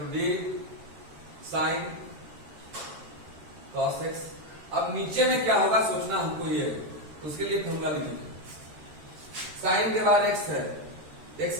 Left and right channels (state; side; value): late; left; 13 ms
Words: d sine cos x. अब नीचे में क्या होगा सोचना हमको ये है, उसके लिए फॉर्मूला लिखेंगे। साइन के बाद एक्स है,